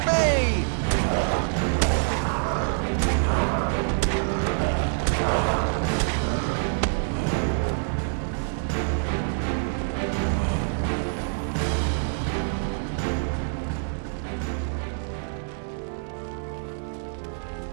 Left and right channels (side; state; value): left; silent; digital silence